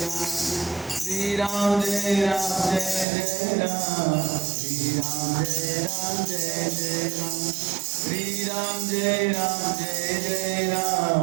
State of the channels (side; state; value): left; drops out; at 3.1 s